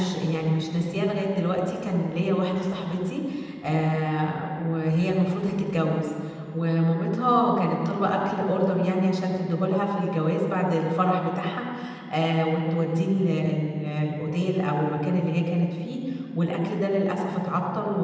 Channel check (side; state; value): both; identical; correlation 1.00